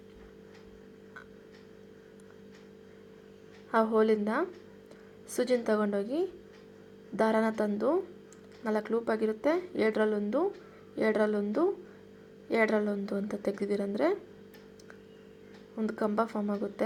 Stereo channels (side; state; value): both; identical; correlation 1.00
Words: ಆ ಹೋಲಿಂದ ಸೂಜಿನ ತಗೊಂಡೋಗಿ ದಾರಾನ ತಂದು 4 ಲೂಪ್ ಆಗಿರುತ್ತೆ, 7ರಲ್ಲೊಂದು 2ರಲ್ಲೊಂದು 2ರಲ್ಲೊಂದು ಅಂತ ತೆಗೆದಿರಂದರೆ ಒಂದು ಕಂಬ ಫಾರ್ಮ್